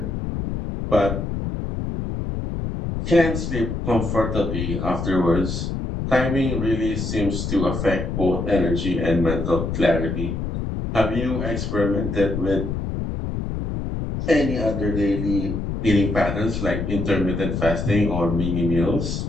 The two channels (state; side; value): noise; left; rumble, 3 dB below the sound